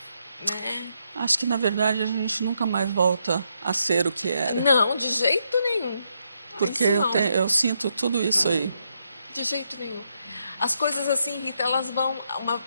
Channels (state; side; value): inverted; both; correlation -0.79